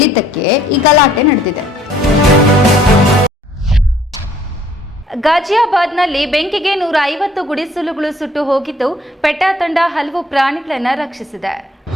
ಈ ಗಲಾಟೆ ನಡೆದಿದೆ. ಗಾಜಿಯಾಬಾದ್ನಲ್ಲಿ ಬೆಂಕಿಗೆ 150 ಗುಡಿಸಲುಗಳು ಸುಟ್ಟು ಹೋಗಿದ್ದು, ಪೆಟಾ ತಂಡ ಹಲವು ಪ್ರಾಣಿಗಳನ್ನು ರಕ್ಷಿಸಿದೆ.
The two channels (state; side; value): normal; both; correlation 0.60